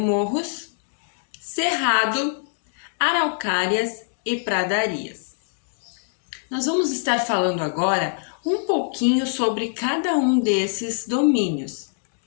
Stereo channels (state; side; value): silent; right; digital silence